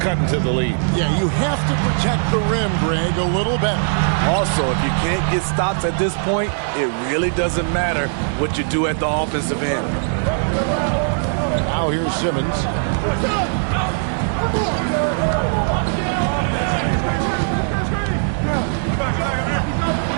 into the lead. Yeah, you have to protect the rim, Greg, a little better. Also, if you can't get stops at this point, it really doesn't matter what you do at the offensive end. Now here's Simmons.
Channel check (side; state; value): left; silent; digital silence